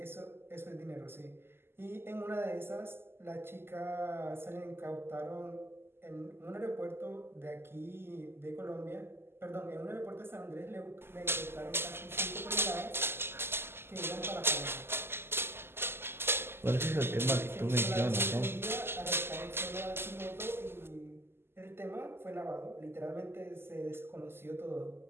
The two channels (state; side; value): late; left; 0.12 ms